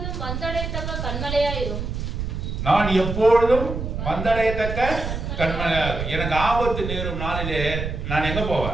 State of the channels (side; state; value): right; noise; rumble, 4 dB below the sound